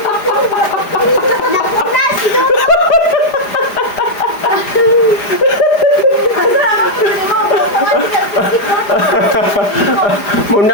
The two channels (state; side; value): late; right; 4.9 ms